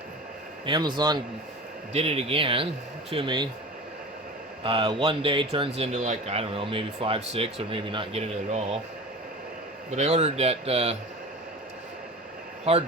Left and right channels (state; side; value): normal; both; correlation 0.35